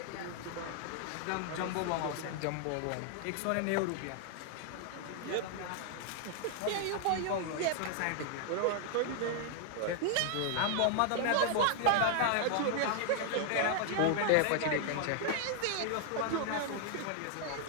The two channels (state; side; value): different; both; correlation 0.00